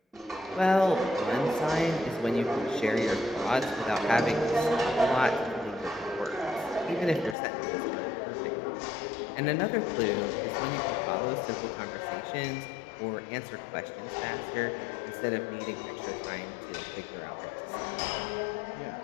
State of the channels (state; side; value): drops out; right; at 7.4 s